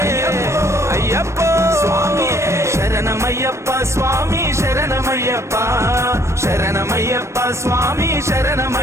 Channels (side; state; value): left; late; 0.13 ms